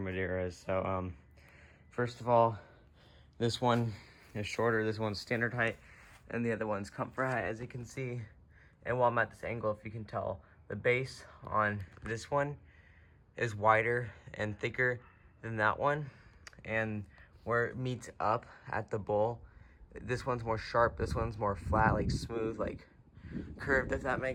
Maderas. So, first of all, this one is shorter, this one's standard height, and the other one's comfort height, as you can see. And while I'm at this angle, if you can tell, the base on this one is wider and thicker than that one. And where it meets up at the bowl, this one's more sharp, this one's more flat, like smooth, like curved, if that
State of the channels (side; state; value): both; identical; correlation 1.00